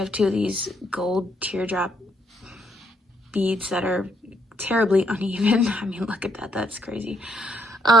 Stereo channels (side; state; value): both; normal; correlation 0.72